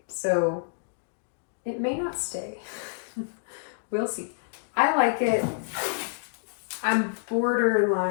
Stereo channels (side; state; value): right; silent; digital silence